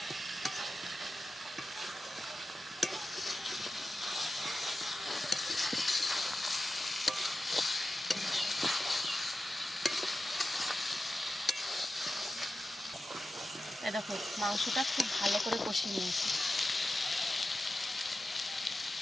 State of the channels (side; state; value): both; normal; correlation 0.93